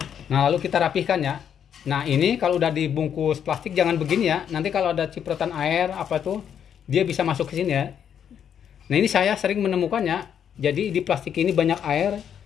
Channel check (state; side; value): quieter; right; 8.6 dB